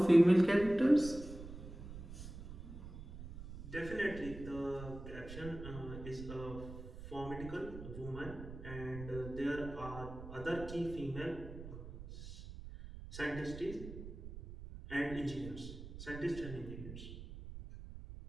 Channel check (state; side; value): noise; right; rumble, 11 dB below the sound